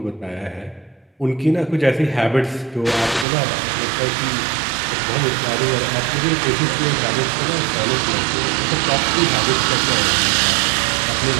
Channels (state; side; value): drops out; left; at 3.2 s